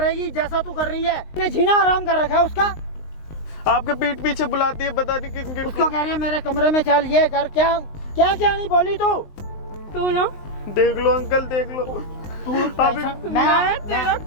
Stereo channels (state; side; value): late; right; 19 ms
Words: जैसा तू कर रही है। ने जीना आराम कर रखा है उसका। आपके पीठ पीछे बुलाती है, बता नहीं किन किन उसको कह रही है मेरे कमरे में चल, ये कर। क्या क्या क्या नहीं बोली तू? तू ना, देख लो अंकल, देख लो। तू अभी मैं तेरा